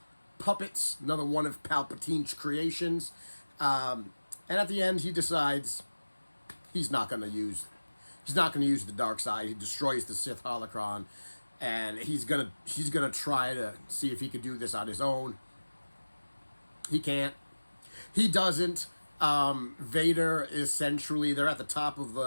puppets, another one of Palpatine's creations? And at the end, he decides he's not going to use the dark side. He destroys the Sith holocron, and he's gonna try to see if he could do this on his own. He can't. He doesn't. Vader essentially, they're at the top of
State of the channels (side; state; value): both; inverted; correlation -1.00